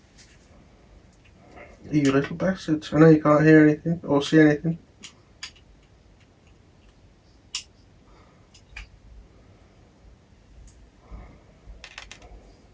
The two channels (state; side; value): identical; both; correlation 1.00